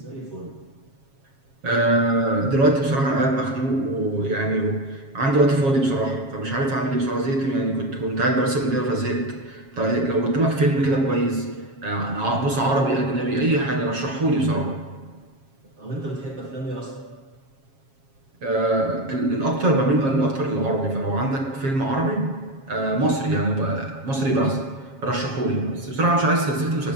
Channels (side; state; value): left; late; 7.4 ms